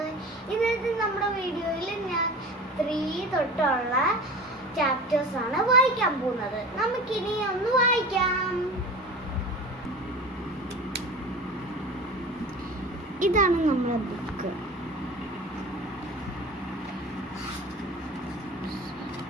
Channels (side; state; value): both; normal; correlation 0.35